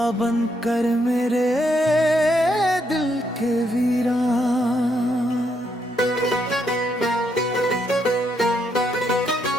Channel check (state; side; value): normal; both; correlation 0.76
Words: बनकर मेरे दिल के वीरान।